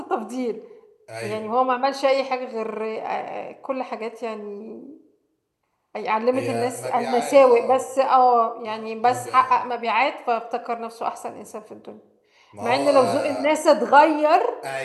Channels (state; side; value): identical; both; correlation 1.00